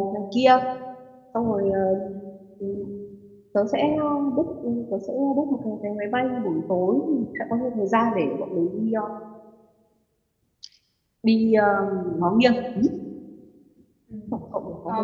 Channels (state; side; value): identical; both; correlation 1.00